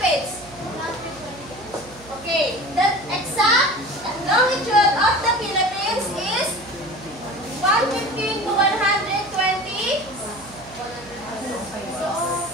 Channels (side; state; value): right; noise; hum, 22 dB below the sound